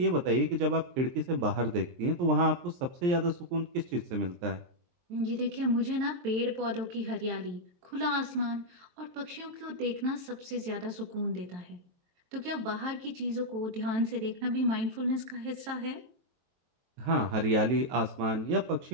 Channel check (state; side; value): late; left; 23 ms